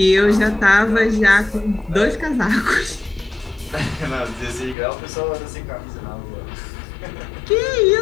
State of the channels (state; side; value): drops out; right; at 4.8 s